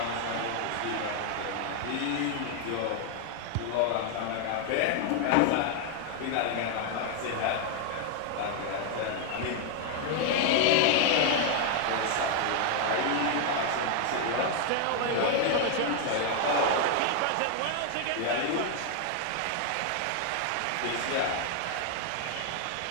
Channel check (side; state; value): both; different; correlation 0.00